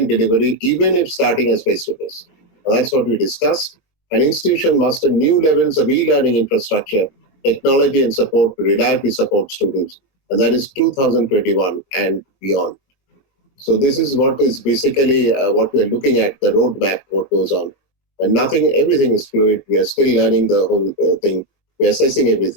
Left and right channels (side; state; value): right; late; 22 ms